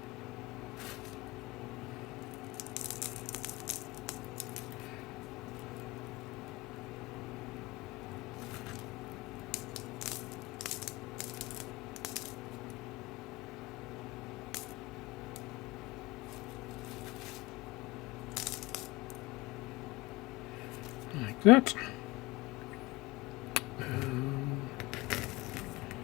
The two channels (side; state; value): right; quieter; 21.4 dB